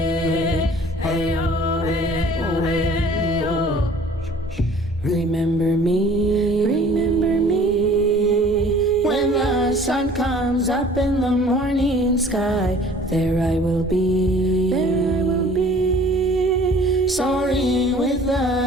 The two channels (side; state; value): both; normal; correlation 0.51